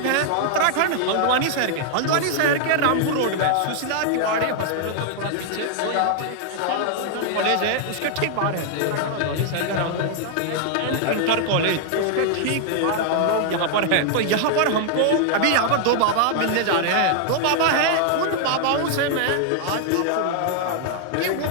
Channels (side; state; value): both; different; correlation 0.00